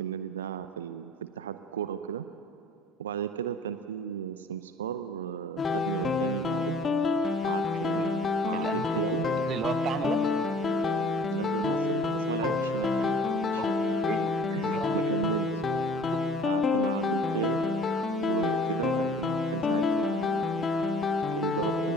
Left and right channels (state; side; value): normal; both; correlation 0.49